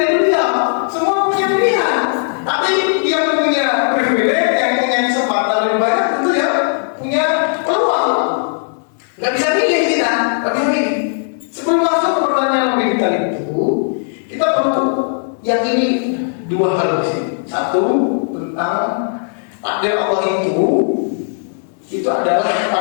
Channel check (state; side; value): silent; right; digital silence